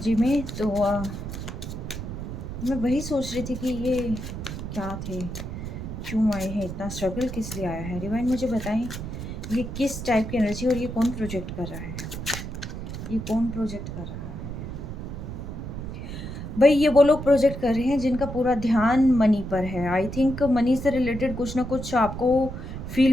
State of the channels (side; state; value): right; noise; rumble, 7 dB below the sound